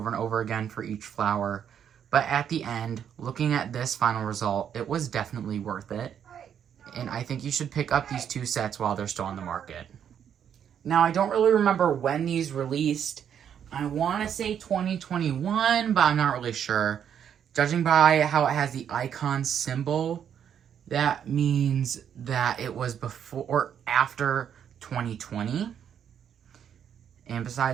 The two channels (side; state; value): left; quieter; 8.7 dB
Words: and over again for each flower. But at the end, looking at this final result, it was definitely worth it. And I think you should pick up these 2 sets while they're still on the market. Now, I don't really remember when these released. I want to say 2021, but I'm not really sure. Judging by how it has the icon symbol, that means that it was before or after 2020. And